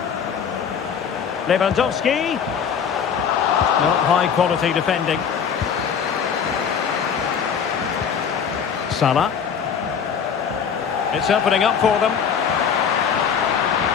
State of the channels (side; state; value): right; quieter; 7.2 dB